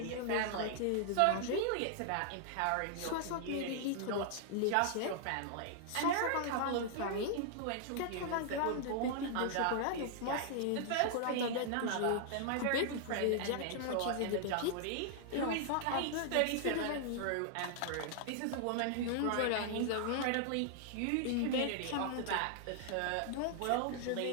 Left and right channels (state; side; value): different; both; correlation -0.01